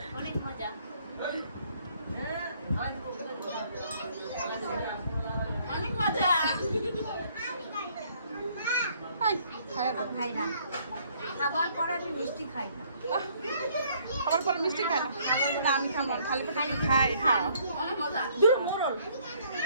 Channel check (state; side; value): inverted; both; correlation -0.64